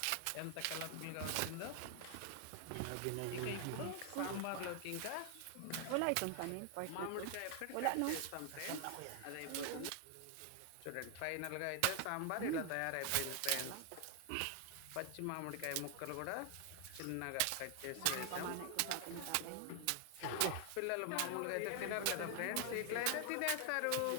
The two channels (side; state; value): both; different; correlation 0.00